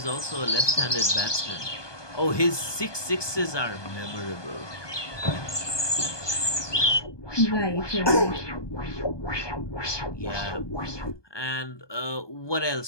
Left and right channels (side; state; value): right; late; 1.2 ms